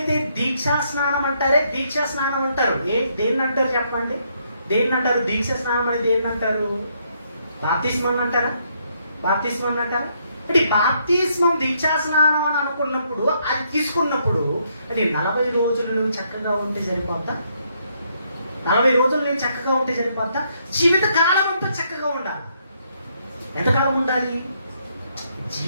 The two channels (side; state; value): both; inverted; correlation -0.73